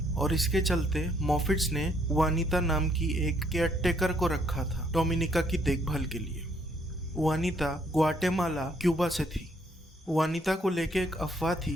और इसके चलते मॉफिट्स ने वानिता नाम की एक केयरटेकर को रखा था डोमिनिका की देखभाल के लिए। वानिता ग्वाटेमाला, क्यूबा से थी। वानिता को लेके एक अफवाह थी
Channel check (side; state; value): both; normal; correlation 0.68